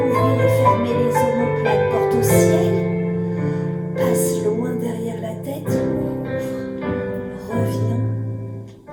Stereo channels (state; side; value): identical; both; correlation 1.00